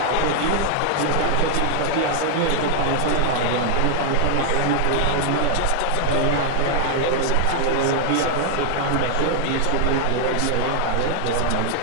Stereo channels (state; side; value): different; both; correlation 0.00